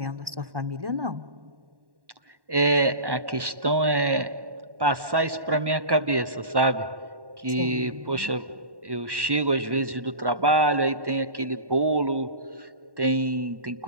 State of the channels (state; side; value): late; left; 1.1 ms